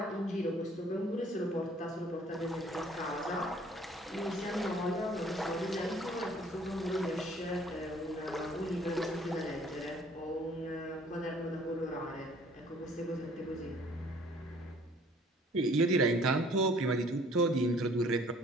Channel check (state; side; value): normal; both; correlation 0.56